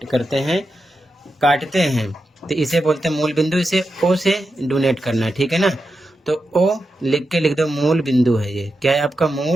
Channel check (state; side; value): normal; both; correlation 0.88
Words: करते हैं, काटते हैं, तो इसे बोलते हैं मूल बिंदु। इसे ओ से डोनेट करना है, ठीक है ना। तो ओ लिख के लिख दो, मूल बिंदु है ये। क्या है आपका?